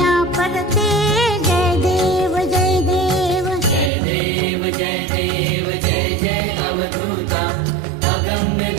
परते जय देव जय देव जय देव जय देव जय जय अवधूता अगम्य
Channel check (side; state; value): left; drops out; at 3.9 s